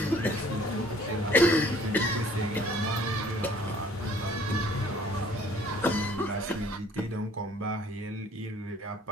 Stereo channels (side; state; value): both; normal; correlation 0.57